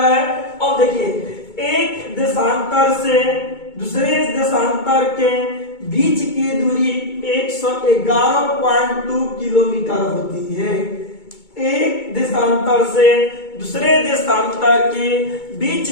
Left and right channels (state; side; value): late; right; 2.2 ms